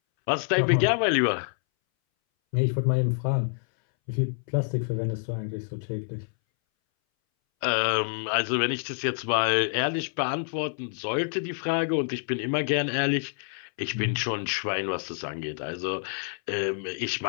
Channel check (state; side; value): silent; right; 60 dB below the other